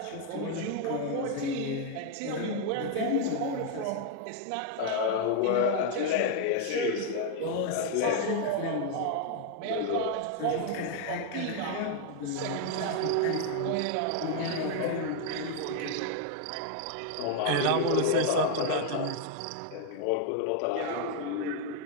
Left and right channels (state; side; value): different; both; correlation 0.00